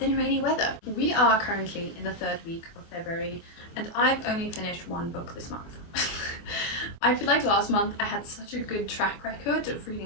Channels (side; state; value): right; late; 24 ms